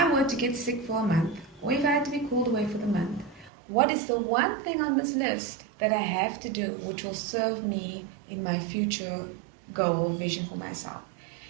were to get sick for a month, or if I had to be called away for the month, what is the one thing on this list that I have to do which will serve me in my future goal, vision for myself?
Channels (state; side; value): drops out; left; at 3.5 s